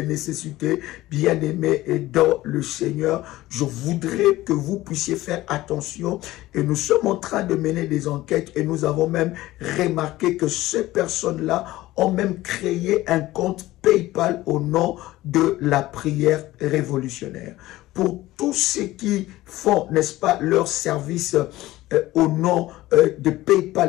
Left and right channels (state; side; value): quieter; right; 16.9 dB